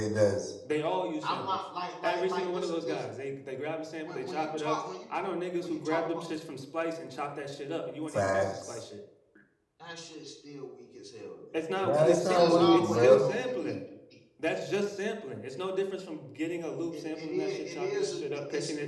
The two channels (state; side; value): identical; both; correlation 1.00